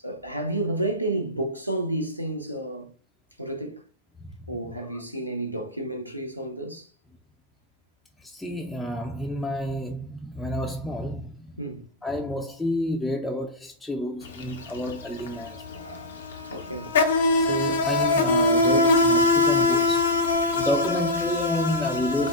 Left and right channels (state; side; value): normal; both; correlation -0.07